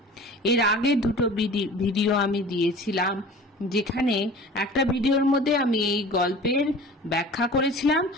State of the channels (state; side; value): normal; both; correlation 0.41